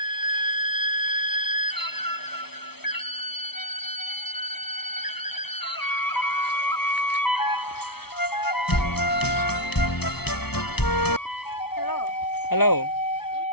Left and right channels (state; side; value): late; right; 0.97 ms